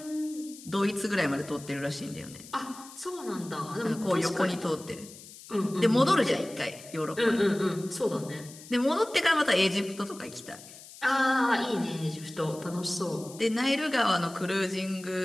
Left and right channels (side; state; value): left; noise; hiss, 17 dB below the sound